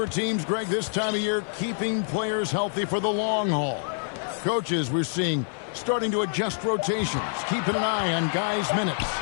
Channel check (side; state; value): right; silent; 61 dB below the other